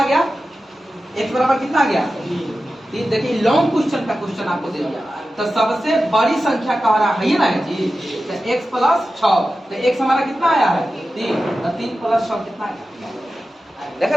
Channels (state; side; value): normal; both; correlation 0.93